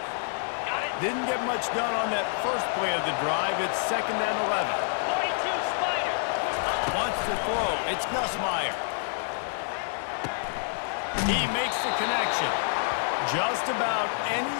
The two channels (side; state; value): right; silent; 59 dB below the other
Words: Didn't get much done on that first play of the drive. It's 2nd and 11. Wants to throw. It's Nussmeier. He makes the connection. Just about any